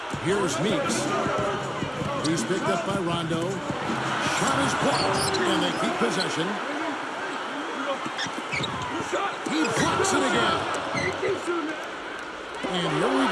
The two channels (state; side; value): identical; both; correlation 1.00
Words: Here's Meeks. He's picked up by Rondo. Shot is blocked, and they keep possession. He blocks it again. And here we